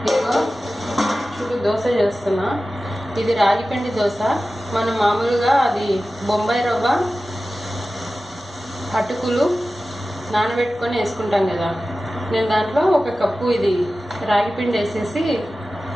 ఇదిగో చూడు దోశ చేస్తున్నా. ఇది రాగిపిండి దోశ. మనం మామూలుగా అది బొంబాయి రవ్వ అటుకులు నానబెట్టుకొని వేసుకుంటాం కదా, నేను దాంట్లో 1 కప్పు ఇది రాగిపిండి వేసేసి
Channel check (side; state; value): both; normal; correlation 0.95